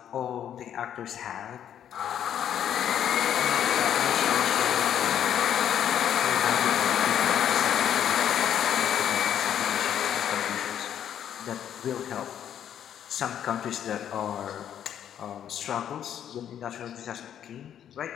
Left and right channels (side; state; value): right; quieter; 9.8 dB